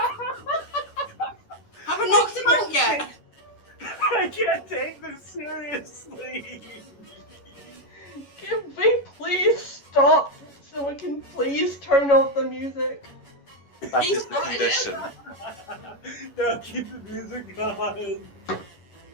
Please turn off the music. That He is the started it. condition. No, keep the music going.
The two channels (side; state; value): right; late; 11 ms